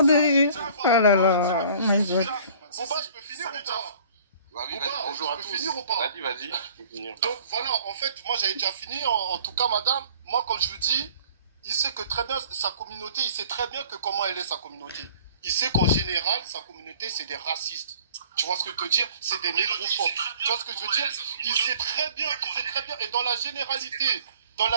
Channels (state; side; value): inverted; both; correlation -0.52